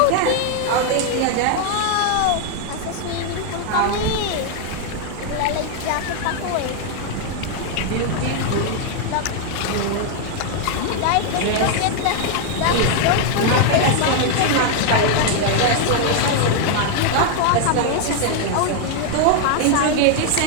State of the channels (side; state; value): both; different; correlation 0.00